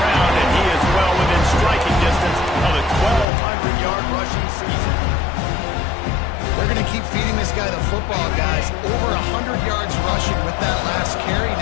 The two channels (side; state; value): right; drops out; at 3.2 s